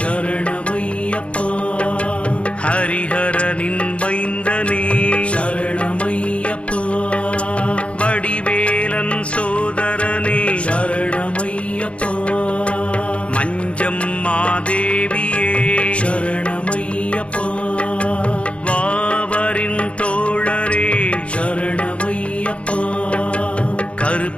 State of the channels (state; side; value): late; right; 0.061 ms